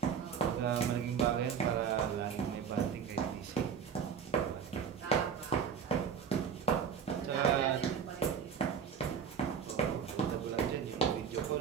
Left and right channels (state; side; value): quieter; left; 7.3 dB